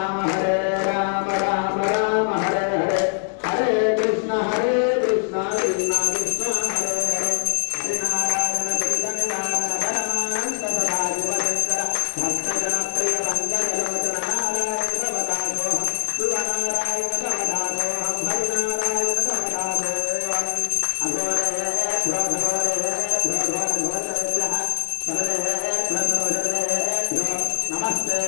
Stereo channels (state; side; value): silent; right; digital silence